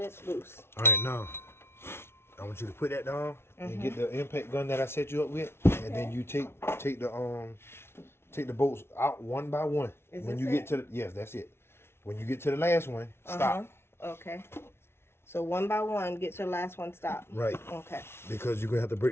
it's loose. All right, now, I want you to put that down and get the impact gun that I set you up with, and then you take the bolts out one by one. Is when this you get to yes, that's it. When you get to the last one, stop. Okay. So one by one, get your last one stopped. Right. Okay. Because you're going to have to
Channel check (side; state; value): right; late; 0.12 ms